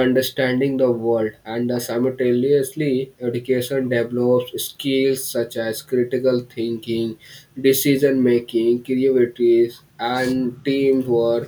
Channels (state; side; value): identical; both; correlation 1.00